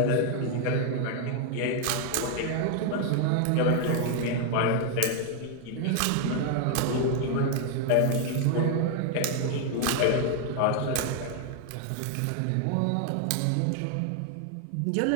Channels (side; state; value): both; different; correlation 0.00